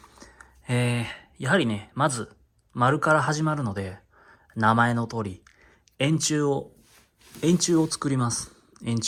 やはりね、まず丸から始まるので、名前の通り円柱を作ります。円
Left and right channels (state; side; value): identical; both; correlation 1.00